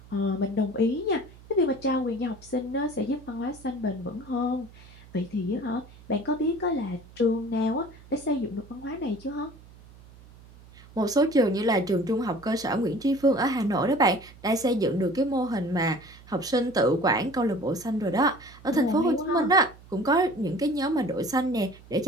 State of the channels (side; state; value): right; noise; hum, 22 dB below the sound